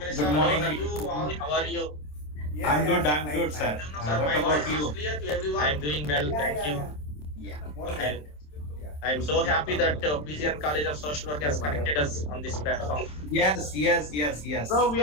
morning. How are you? I'm good, fine. sir. Sir, What my about voice you? is clear to everyone? I'm doing well, thank you. Yeah. More Okay. than. Yeah. I'm so happy that PGN College of Social Work has connected us on this platform. Yes. So we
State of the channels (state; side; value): late; right; 27 ms